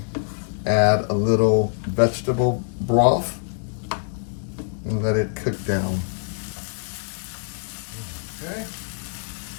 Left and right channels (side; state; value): right; silent; 62 dB below the other